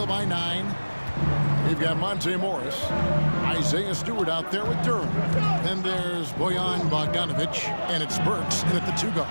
by 9. We've got Monte Morris, Isaiah Stewart out there with Durham. Then there's Bojan Bogdanovich, and it's Burks in at the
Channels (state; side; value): inverted; both; correlation -1.00